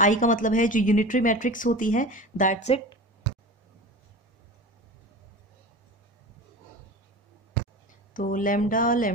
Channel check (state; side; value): normal; both; correlation 0.32